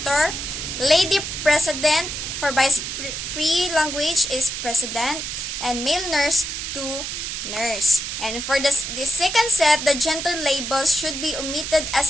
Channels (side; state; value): right; noise; hiss, 5 dB below the sound